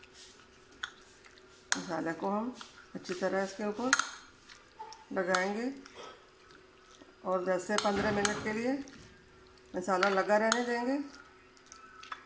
मसाले को हम अच्छी तरह इसके ऊपर लगाएंगे और 10 से 15 मिनट के लिए मसाला लगा रहने देंगे।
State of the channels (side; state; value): both; identical; correlation 1.00